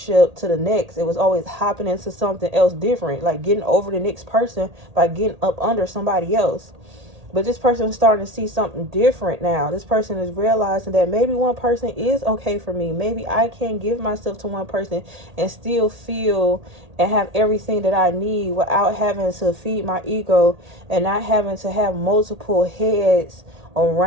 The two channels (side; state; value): left; late; 1.8 ms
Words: to the next. It was always hopping into something else different, like getting over the next person by getting up under somebody else. But this person is starting to see something different now. This person is realizing that maybe one person is okay for me. Maybe I can give myself to one person and still feel and have everything that I need without having to feed my ego and not having to have multiple heads